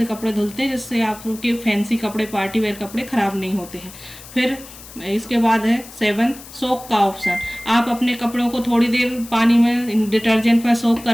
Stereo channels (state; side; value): noise; left; hiss, 17 dB below the sound